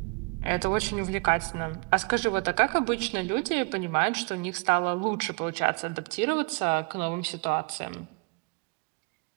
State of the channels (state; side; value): quieter; left; 33.0 dB